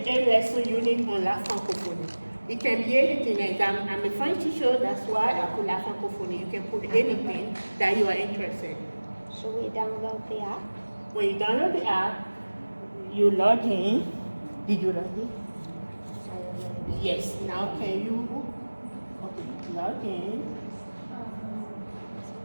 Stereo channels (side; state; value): both; inverted; correlation -1.00